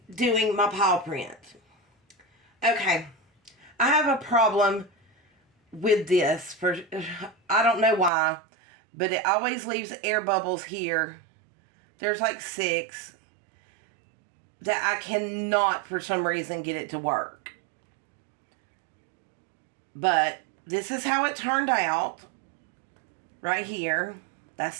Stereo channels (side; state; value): left; drops out; at 8.1 s